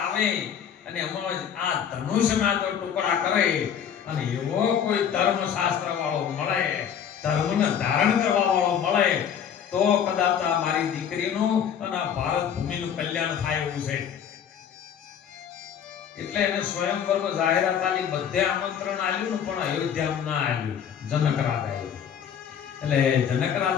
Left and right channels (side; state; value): right; quieter; 8.5 dB